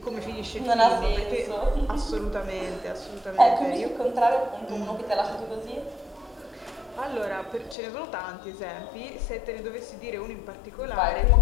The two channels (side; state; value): right; drops out; at 7.8 s